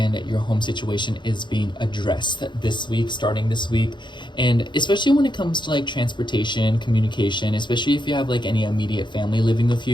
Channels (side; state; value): right; late; 0.22 ms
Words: your home situation is being addressed this week, starting this week. And especially when it comes to like transportation, communication, especially if you have like any immediate family living with